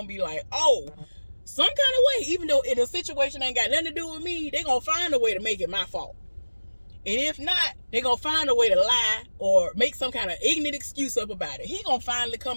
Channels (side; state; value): both; inverted; correlation -1.00